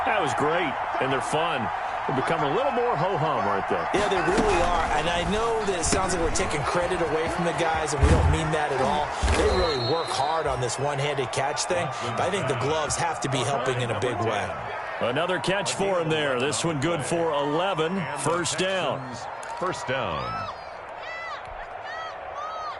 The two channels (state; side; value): identical; both; correlation 1.00